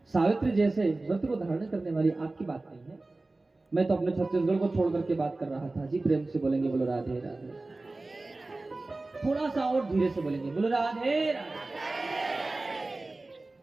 सावित्री जैसे व्रत को धारण करने वाली आपकी बात नहीं है। मैं तो अपने छत्तीसगढ़ को छोड़ करके बात कर रहा था जी। प्रेम से बोलेंगे बोलो राधे राधे। थोड़ा सा और धीरे से बोलेंगे बोलो राधे राधे।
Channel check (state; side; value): quieter; left; 3.1 dB